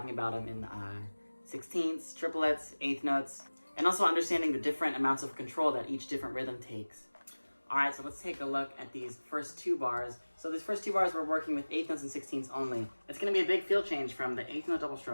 about them in sixteenths, triplets, eighth notes, and also understanding the different amounts of control that each different rhythm takes. Alright, so let's take a look at these first two bars. So these first two bars we're working with eighth notes and sixteenths only. It's going to be a big feel change from the eighth note double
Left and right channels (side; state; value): both; inverted; correlation -1.00